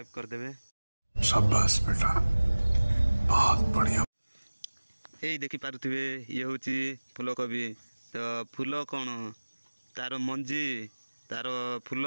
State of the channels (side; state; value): both; inverted; correlation -1.00